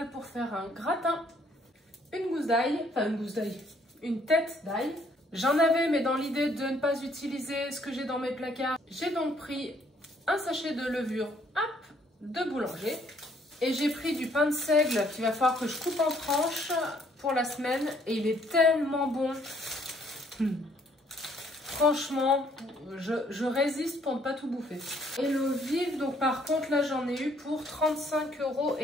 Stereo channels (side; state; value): both; normal; correlation 0.65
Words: pour faire un gratin. Une gousse d'ail, enfin une gousse d'ail, une tête d'ail. J'en avais, mais dans l'idée de ne pas utiliser ce que j'ai dans mes placards, j'ai donc pris un sachet de levure de boulanger. Et j'ai pris du pain de seigle qu'il va falloir que je coupe en tranches pour la semaine. Et il est tellement bon. Franchement, je résiste pour ne pas tout bouffer. Et l'eau vive, donc par contre, là j'en ai eu pour